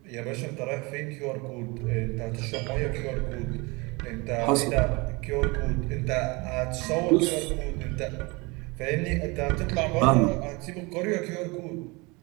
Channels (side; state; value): left; quieter; 26.4 dB